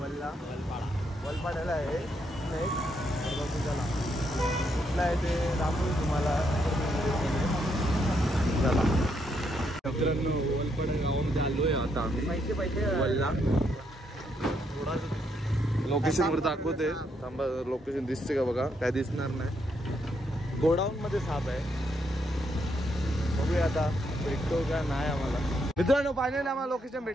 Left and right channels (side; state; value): both; normal; correlation 0.76